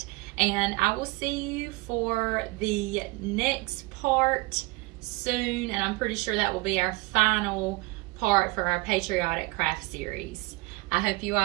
And I will see you for the next part soon. And I'm pretty sure that will be our final part for our Patriotic craft series. I hope you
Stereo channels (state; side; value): quieter; left; 24.3 dB